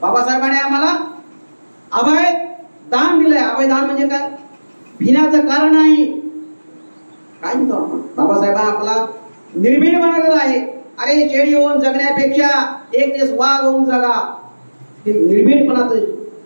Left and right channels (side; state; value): both; inverted; correlation -1.00